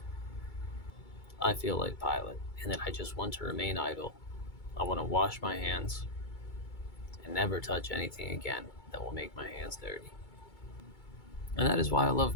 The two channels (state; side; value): late; right; 2.3 ms